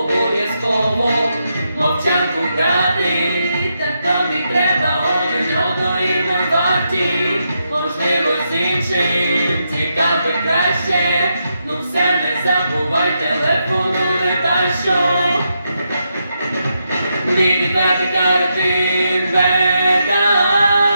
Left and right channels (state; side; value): inverted; both; correlation -0.83